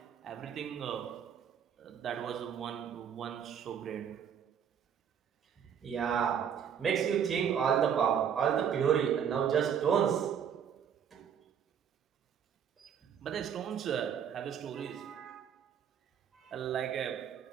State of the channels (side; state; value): left; quieter; 8.1 dB